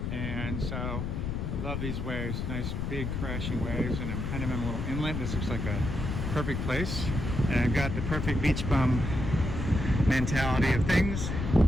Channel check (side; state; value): left; noise; rumble, 3 dB below the sound